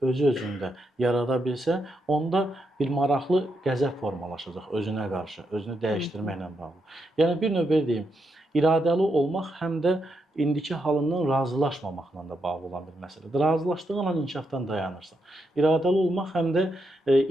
özü-özündə yarada bilsə, onda bir maraqlı qəzəb formalaşacaq özünə qarşı, özünü dəyişdirməklə bağlı. Yəni bir növ belə deyim, iradəli olmaq həm də indiki halından razılaşmamaqla da bağlı olan bir məsələdir. Razılaşdığın an inkişafdan dayanırsan. İradəli olmaq həm də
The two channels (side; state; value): both; normal; correlation 0.82